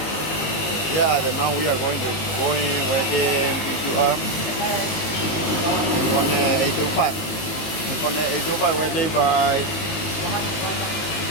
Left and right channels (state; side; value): late; right; 19 ms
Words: Yeah, now we are going where the PQR. Inconel 825. Inconel 825 welding by